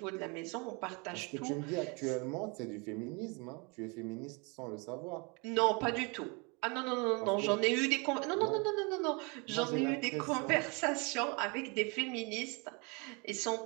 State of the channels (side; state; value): left; quieter; 30.8 dB